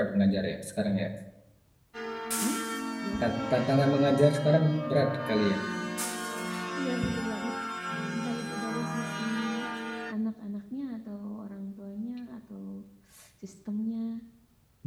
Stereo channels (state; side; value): identical; both; correlation 1.00